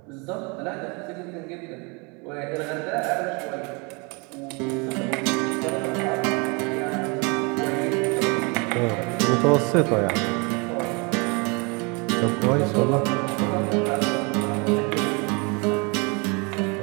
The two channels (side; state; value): left; quieter; 30.6 dB